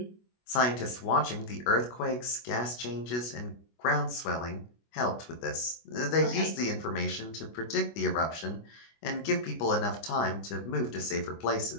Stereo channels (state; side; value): late; right; 25 ms